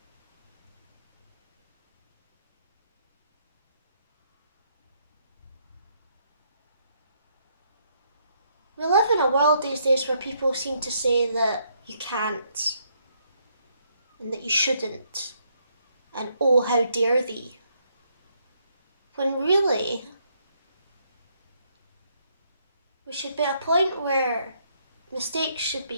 We live in a world these days where people seem to say that you can't and that you shouldn't and oh, how dare thee. When really, we should be at a point where mistakes should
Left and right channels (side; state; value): both; inverted; correlation -0.73